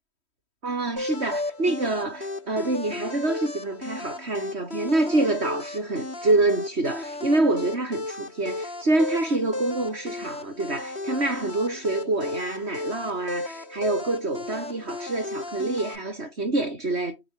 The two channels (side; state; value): left; late; 3.1 ms